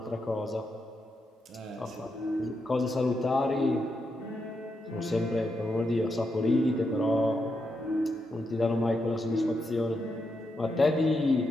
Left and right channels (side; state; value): both; normal; correlation 0.84